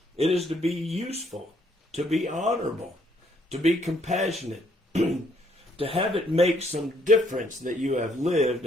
it is to be useful, to be honorable, to be compassionate, to have it make some difference that you have lived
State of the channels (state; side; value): normal; both; correlation 0.69